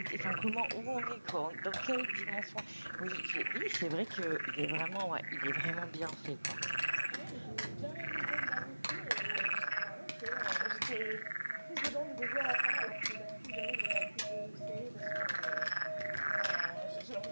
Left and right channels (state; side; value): inverted; both; correlation -1.00